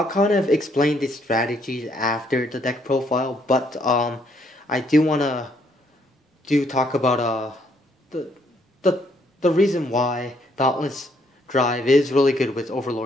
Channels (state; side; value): normal; both; correlation 0.69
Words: kind of explain the strategies after the deck profile, but I do wanna talk about the reason why Dauntless Drive is really good with